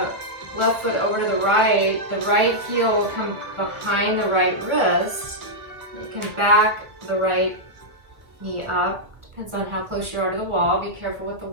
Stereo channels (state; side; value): late; left; 1.6 ms